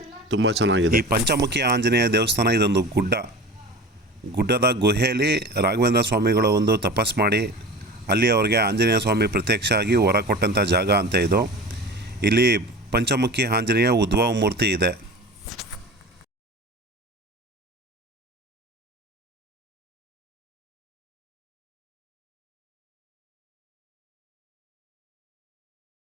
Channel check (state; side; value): normal; both; correlation 0.35